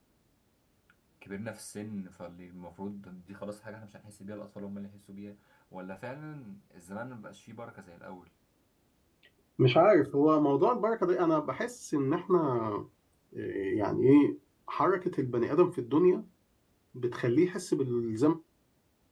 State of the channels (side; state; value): both; identical; correlation 1.00